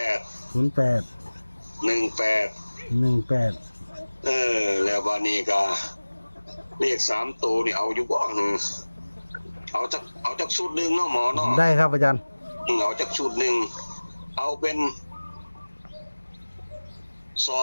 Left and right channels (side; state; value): both; inverted; correlation -1.00